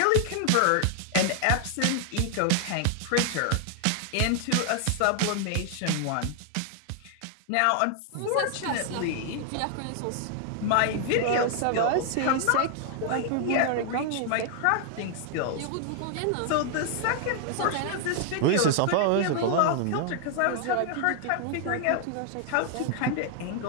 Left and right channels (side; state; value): both; different; correlation 0.00